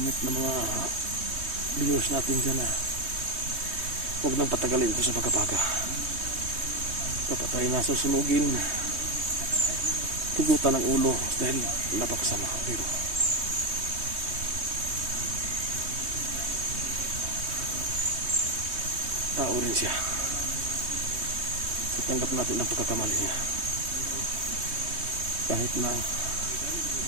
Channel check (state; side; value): late; left; 3.2 ms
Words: ng mga viewers natin dyan na huwag nang patagalin ito sa Baga-Baga. Dapat tayo nasusunugin, tugutan ng ulo dahil napakasama. Pero tao rin siya. So tanggap natin ang pagkakamali niya. Kahit na